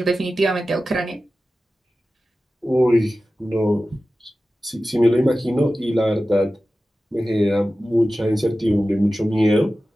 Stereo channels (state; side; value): normal; both; correlation 0.95